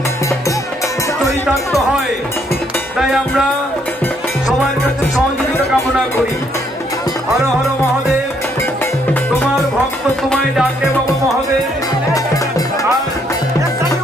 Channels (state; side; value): normal; both; correlation 0.70